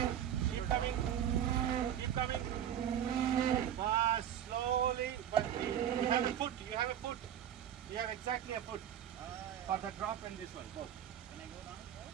coming. Keep coming. Fast, slowly, but you have a foot. You have a foot. You have exactly a foot for the drop and this one. Both. Can I go down?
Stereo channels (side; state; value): left; quieter; 10.1 dB